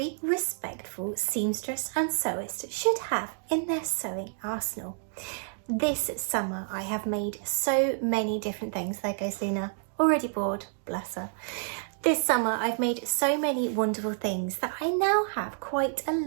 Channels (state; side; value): silent; left; digital silence